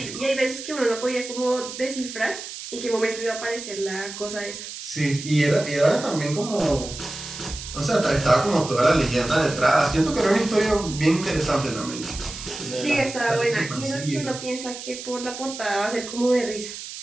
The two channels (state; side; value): noise; right; hiss, 10 dB below the sound